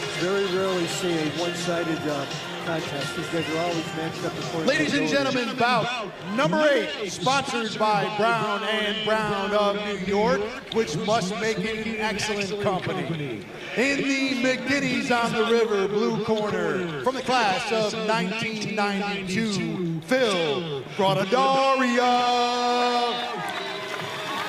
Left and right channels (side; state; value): both; identical; correlation 1.00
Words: Very rarely see a one-sided contest. These guys are always matched up according Ladies to and ability. gentlemen, bout number 8, sponsored by Brown and Brown of New York, which must make it an excellent company. In the McGinnis on the River blue corner, from the class of 1992, Phil Granadaria.